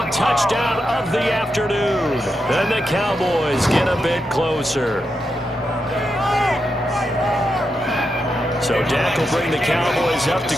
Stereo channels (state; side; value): normal; both; correlation 0.85